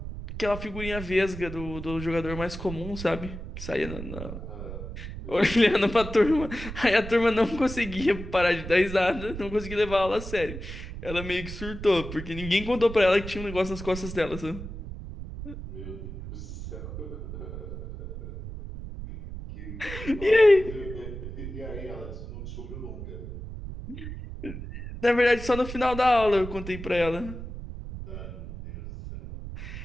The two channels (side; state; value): right; noise; rumble, 9 dB below the sound